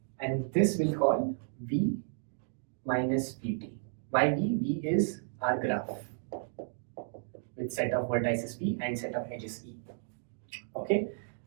and this we'll call V minus Vt. Why V? V is our graph with set of vertices V and set of edges E. Okay,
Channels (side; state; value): left; silent; digital silence